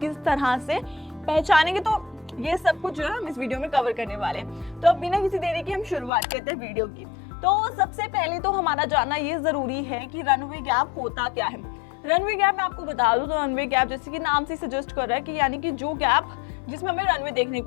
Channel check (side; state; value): right; drops out; at 6.1 s